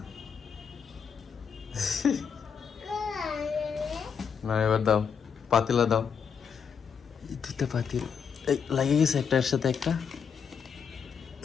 না এবার দাও, পাতিলা দাও। দুটা পাতিল লাগে গেছে একটার সাথে একটা।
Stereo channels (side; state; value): right; quieter; 6.7 dB